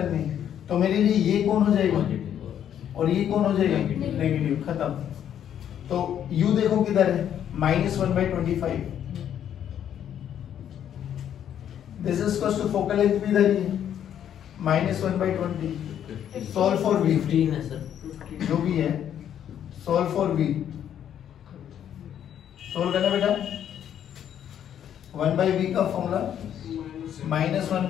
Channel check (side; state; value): right; quieter; 9.8 dB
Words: हैं, तो मेरे लिए ये कौन हो जाएगा और ये कौन हो जाएगा नेगेटिव, खत्म। तो u देखो किधर है, -1/25, this is equals to focal length भी इधर ही है -1/20। सॉल्व फॉर v, 15 है सर, जो भी है सॉल्व फॉर v, सॉल्व करना बेटा। 1/v का फॉर्मूला